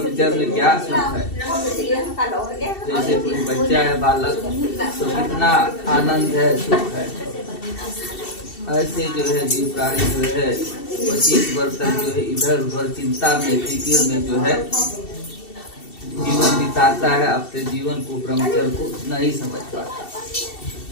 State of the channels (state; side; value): late; right; 2.7 ms